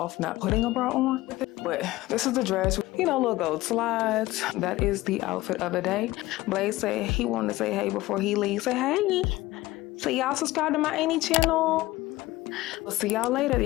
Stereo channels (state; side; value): quieter; right; 18.2 dB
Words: not putting a bra on with it. But this is the dress. Little gold slides. That is the outfit of the day. Blaze said he wanted to say hey before he leaves. Say hey. So y'all subscribe to my Annie channel. We'll see y'all later.